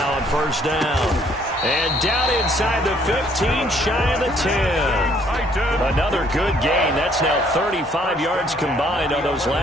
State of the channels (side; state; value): both; normal; correlation 0.64